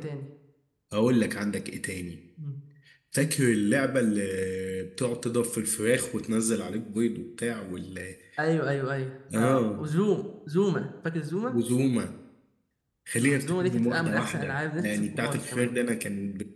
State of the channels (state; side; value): identical; both; correlation 1.00